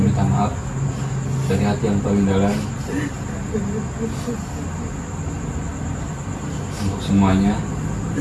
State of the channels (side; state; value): both; identical; correlation 1.00